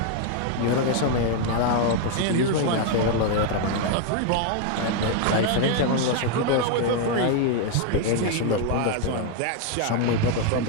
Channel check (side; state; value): both; different; correlation 0.00